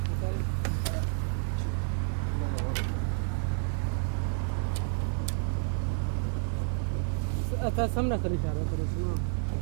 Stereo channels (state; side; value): silent; left; 58 dB below the other